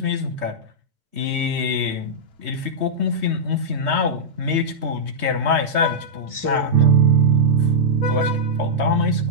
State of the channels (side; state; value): left; late; 3.2 ms